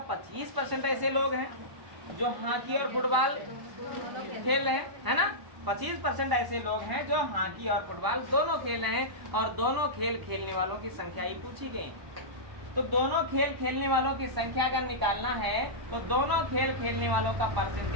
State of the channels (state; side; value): late; left; 1.0 ms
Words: 25% ऐसे लोग हैं जो हॉकी और फुटबॉल खेल रहे हैं, है ना। 25% ऐसे लोग हैं जो हॉकी और फुटबॉल दोनों खेल रहे हैं, और दोनों खेल खेलने वालों की संख्या ही पूछी गई। तो दोनों खेल खेलने वालों की संख्या अगर निकालना है तो दोनों खेल खेलने वालों का